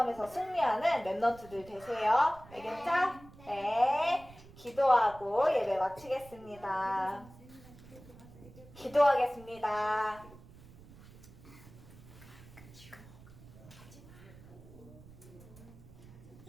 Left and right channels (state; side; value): noise; right; rumble, 20 dB below the sound